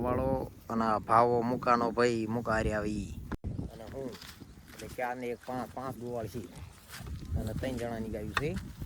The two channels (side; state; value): both; identical; correlation 1.00